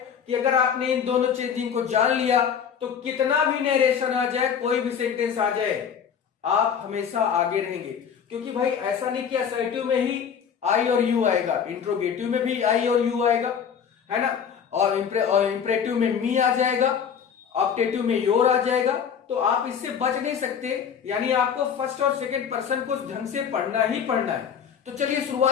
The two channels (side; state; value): right; quieter; 7.5 dB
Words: कि अगर आपने इन दोनों चेंजिंग को जान लिया तो कितना भी नरेशन आ जाए, कोई भी सेंटेंस आ जाए, आप हमेशा आगे रहेंगे। क्योंकि भाई ऐसा नहीं कि असर्टिव में ही आई और यू आएगा, इंट्रोगेटिव में भी आई और यू आएगा, है ना। और इंप्रेटिव में मी आ जाएगा, ऑप्टेटिव में योर आ जाएगा। तो आप इससे बच नहीं सकते, यानी आपको फर्स्ट और सेकंड पर्सन को ढंग से पढ़ना ही पढ़ना है। तो चलिए